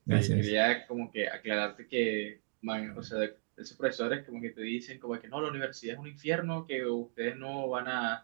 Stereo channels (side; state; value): left; silent; digital silence